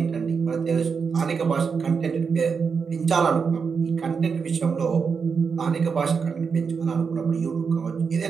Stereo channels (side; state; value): left; quieter; 5.7 dB